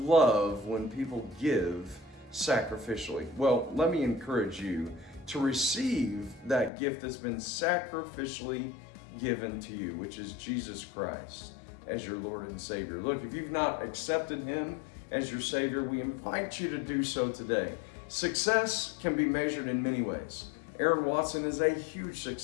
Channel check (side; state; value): right; drops out; at 6.7 s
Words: love when people give sacrificially. Well, let me encourage you to receive that gift that's been sacrificially given to you, which is Jesus Christ as your Lord and Savior. Look, if you've not accepted him as your Savior, we invite you to do so today. Success can be measured in many ways. Aaron Watson is a huge